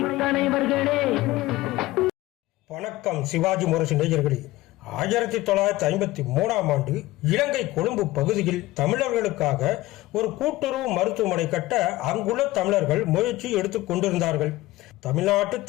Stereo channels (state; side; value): quieter; right; 18.0 dB